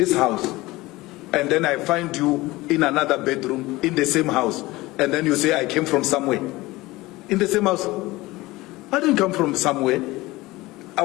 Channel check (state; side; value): quieter; right; 19.8 dB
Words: house, and then I find you in another bedroom in the same house, and then you say I came from somewhere. In the same house. I didn't come from somewhere. I